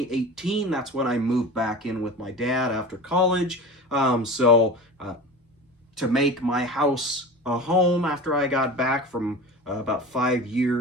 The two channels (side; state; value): both; normal; correlation 0.33